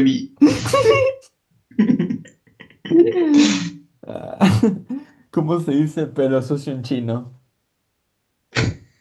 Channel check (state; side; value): identical; both; correlation 1.00